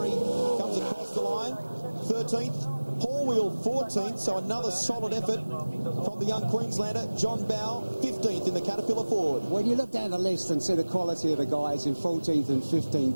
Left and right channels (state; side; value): inverted; both; correlation -1.00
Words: comes across the line, 13th. Paul Wheel 14th, so another solid effort from the young Queenslander. John Bow 15th in the Caterpillar Ford. When you look down the list and see the quality of the guys in 14th and